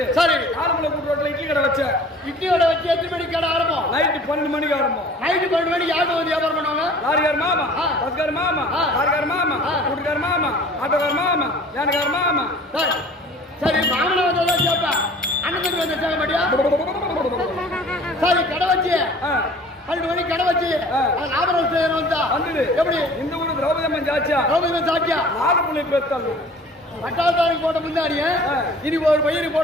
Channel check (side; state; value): both; normal; correlation 0.47